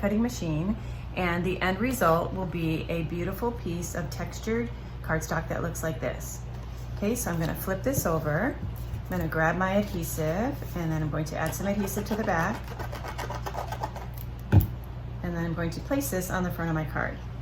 cutting machine, and the end result will be a beautiful piece of textured cardstock that looks like this. Okay, so I'm going to flip this over. I'm going to grab my adhesive, and then I'm going to add some adhesive to the back. And then I'm going to place this on the front of my card.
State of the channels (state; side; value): identical; both; correlation 1.00